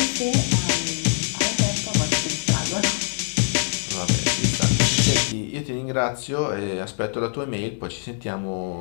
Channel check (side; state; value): right; silent; 57 dB below the other